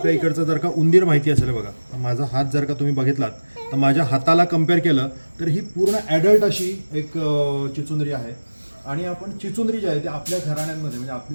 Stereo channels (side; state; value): both; inverted; correlation -1.00